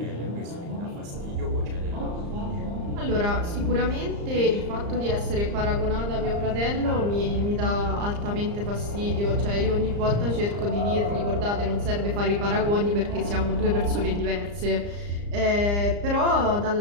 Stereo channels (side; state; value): left; late; 34 ms